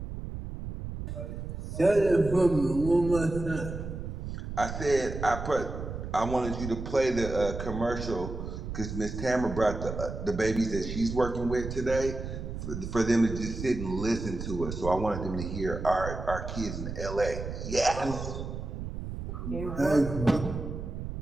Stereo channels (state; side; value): noise; right; rumble, 7 dB below the sound